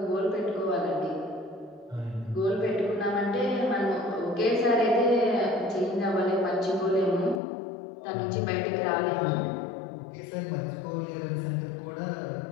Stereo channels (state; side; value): drops out; right; at 7.4 s